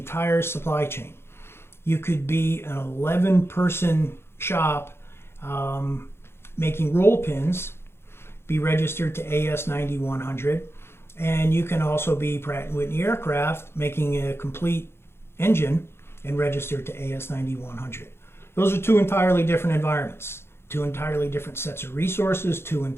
supply chain. You could be an 11-person shop making roll pins, be registered to AS9100, and you can also be Pratt & Whitney Aircraft making a complete engine and registered to AS9100. Those are 2 entirely different environments, 2 entirely different sets of resources, 2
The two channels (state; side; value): late; right; 0.12 ms